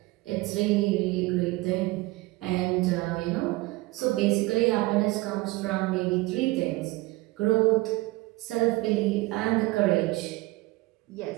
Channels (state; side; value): quieter; left; 20.7 dB